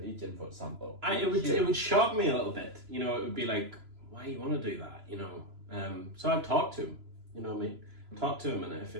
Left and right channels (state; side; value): late; left; 3.0 ms